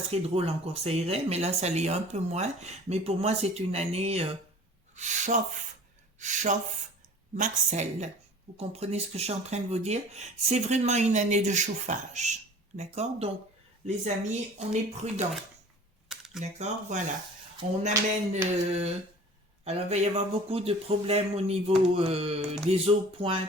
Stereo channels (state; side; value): normal; both; correlation 0.45